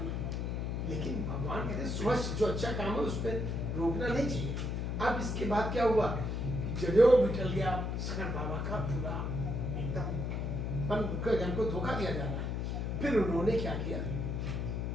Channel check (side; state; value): left; noise; hum, 1 dB below the sound